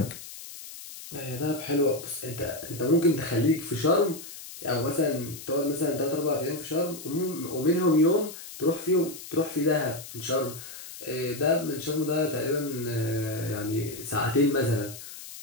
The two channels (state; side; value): noise; left; hiss, 13 dB below the sound